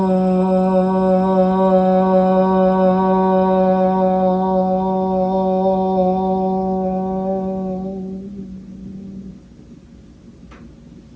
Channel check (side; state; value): both; identical; correlation 1.00